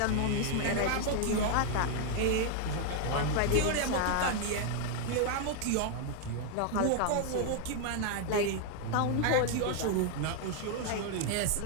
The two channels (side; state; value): both; different; correlation 0.00